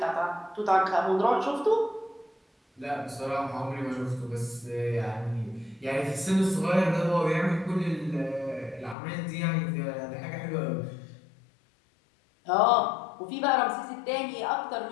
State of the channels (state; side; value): drops out; right; at 9.0 s